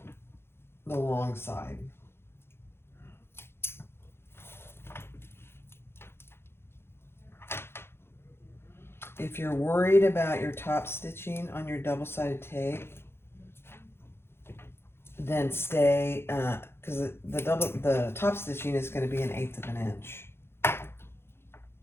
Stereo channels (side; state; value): right; late; 0.12 ms